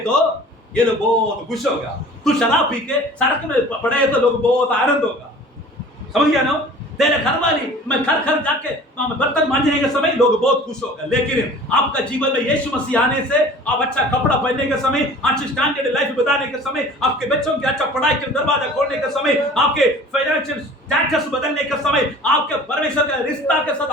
तो ये लोग बहुत खुश होगा। तू शराब पी के सड़क में पड़े तो लोग बहुत आनंद होगा। समझ गया ना? तेरे घर वाली मैं घर जाके बर्तन मांजने के समय लोग बहुत खुश होगा। लेकिन आपका जीवन में यीशु मसीह आने से, आप अच्छा कपड़ा पहनने के समय, अच्छी स्टैंडर्ड लाइफ बताने के समय, आपके बच्चों के अच्छा पढ़ाई के दरवाजा खोलने के समय, आपके फाइनेंशियल स्टेटस बदलने के समय, आपके परमेश्वर का रिश्ता के साथ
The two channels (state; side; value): normal; both; correlation 0.45